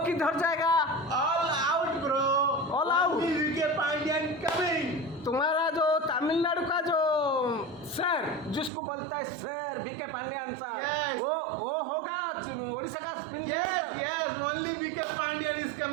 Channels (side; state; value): left; drops out; at 8.7 s